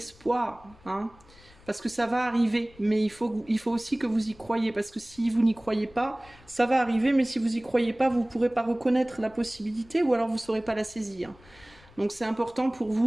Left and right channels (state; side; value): noise; left; rumble, 25 dB below the sound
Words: parce que ça va arriver, mais il faut aussi que vous y croyez, parce que si vous n'y croyez pas, ça va arriver, mais si vous n'y croyez pas, vous ne pourrez pas reconnaître la possibilité, ou alors vous ne saurez pas la saisir. Donc c'est important pour